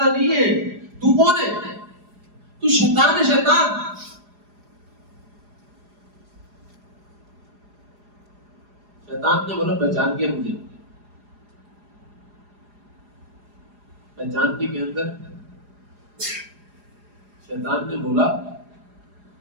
نہیں ہے، تو کون ہے؟ تو شیطان ہے، شیطان. شیطان نے بولا پہچان کیا مجھے. پہچاننے کے اندر شیطان نے بولا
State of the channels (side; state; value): left; late; 4.9 ms